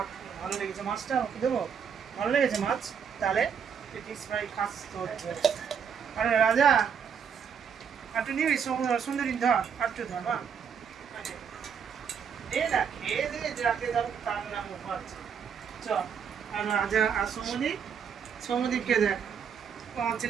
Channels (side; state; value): left; quieter; 7.1 dB